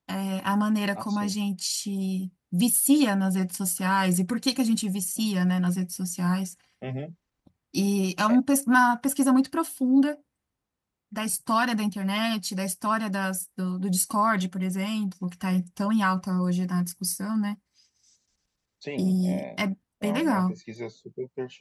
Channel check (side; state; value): both; identical; correlation 1.00